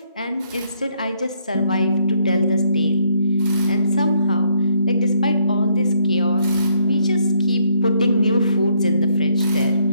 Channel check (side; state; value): both; inverted; correlation -0.70